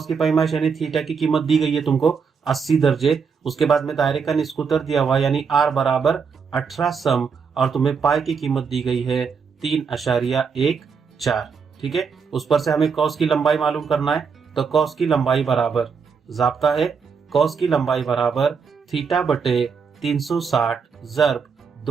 यानी थीटा की कीमत दी गई है तुमको 80 दर्जे। उसके बाद में दायरे का निस्कुतर दिया हुआ है यानी आर बराबर 18 सम, और तुम्हें पाई की कीमत दी गई है 3.14। ठीक है, उस पर से हमें कॉस की लंबाई मालूम करना है। तो कॉस की लंबाई बराबर, ज़ाब्ता है कॉस की लंबाई बराबर थीटा बटे 360 ज़रब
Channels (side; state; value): left; quieter; 5.8 dB